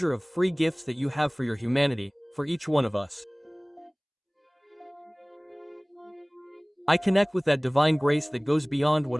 of free gifts that you have for your humanity, for each one of us. I connect with that divine grace that goes beyond what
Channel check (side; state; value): both; identical; correlation 1.00